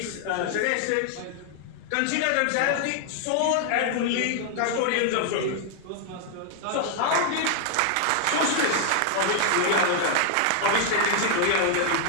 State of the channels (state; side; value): different; both; correlation 0.00